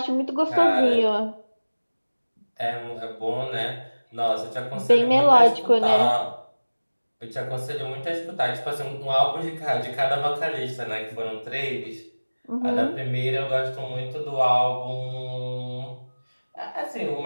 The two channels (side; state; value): both; inverted; correlation -1.00